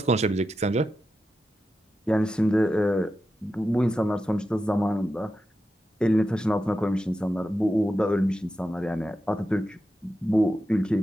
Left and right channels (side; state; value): both; normal; correlation 0.90